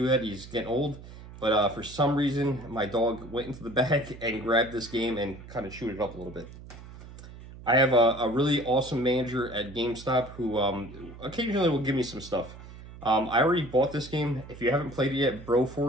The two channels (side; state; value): right; noise; hum, 16 dB below the sound